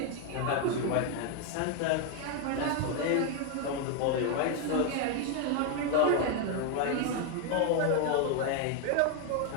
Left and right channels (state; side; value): different; both; correlation 0.01